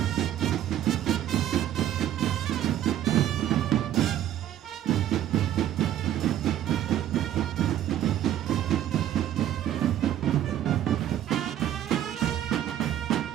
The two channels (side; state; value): left; quieter; 11.8 dB